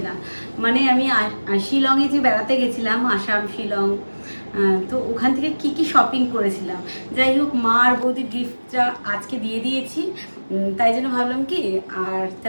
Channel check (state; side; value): inverted; both; correlation -1.00